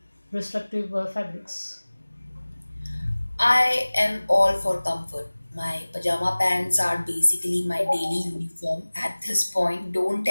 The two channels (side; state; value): both; inverted; correlation -1.00